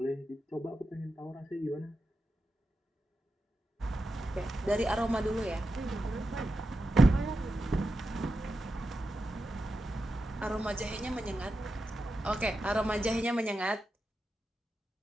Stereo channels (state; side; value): normal; both; correlation 0.90